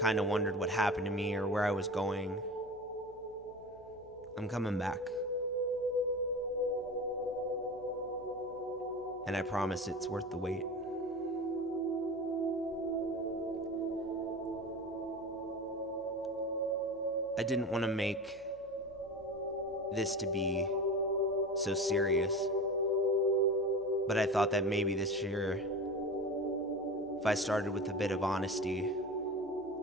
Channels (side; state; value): left; noise; hum, 25 dB below the sound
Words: kind of wondered what happened to me or where I was going, I'm coming back. And I promise it's worth the wait. I didn't want to make this to be so serious, but I thought that maybe this year, if I started with a bit of honesty,